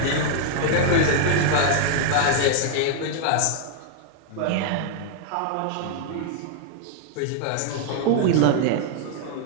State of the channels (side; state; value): both; different; correlation 0.00